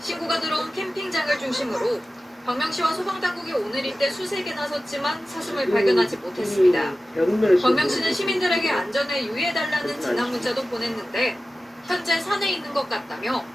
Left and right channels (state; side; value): normal; both; correlation 0.95